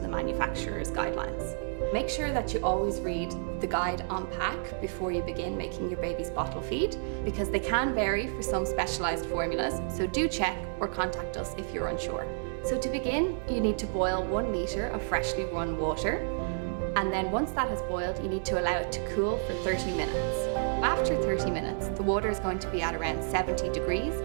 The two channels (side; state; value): left; silent; 58 dB below the other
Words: the manufacturer's guidelines. Make sure that you always read the guide on pack before you begin making your baby's bottle feed, because they can vary for some specialized formulas, so do check or contact us if you're unsure. So to begin, you need to boil 1 litre of freshly run water, and then once that has boiled, you need to allow it to cool for 30 minutes. After 30 minutes, the water is going to be at around 70 degrees,